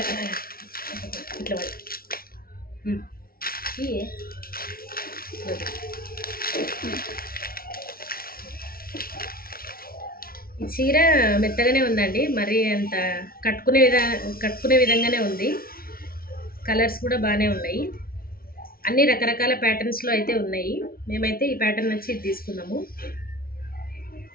ఇట్లా ఈ చీర మెత్తగానే ఉందండి, మరి అంత కట్టుకునే విధంగానే ఉంది. కలర్స్ కూడా బాగానే ఉన్నాయి. అన్ని రకరకాల ప్యాటర్న్స్లో అయితే ఉన్నాయి. మేమైతే ఈ ప్యాటర్న్ వచ్చి తీసుకున్నాము.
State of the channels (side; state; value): right; late; 0.43 ms